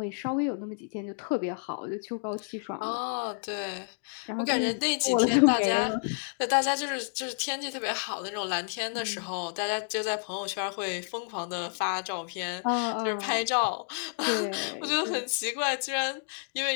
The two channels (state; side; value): silent; right; digital silence